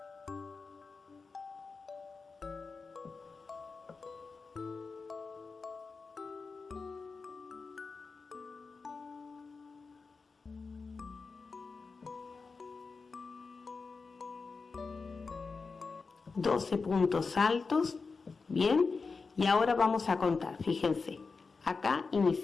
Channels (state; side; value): quieter; right; 4.5 dB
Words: $12 puntos altos, bien, y ahora vamos a contar. Fíjense, acá